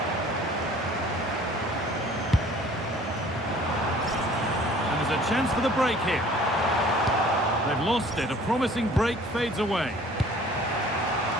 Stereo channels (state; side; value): normal; both; correlation 0.51